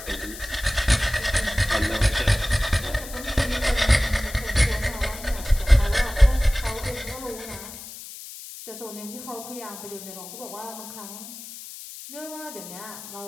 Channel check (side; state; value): left; noise; hiss, 13 dB below the sound